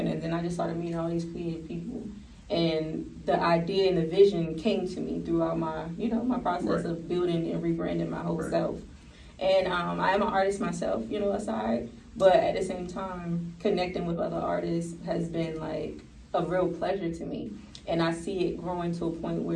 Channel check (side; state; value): both; identical; correlation 1.00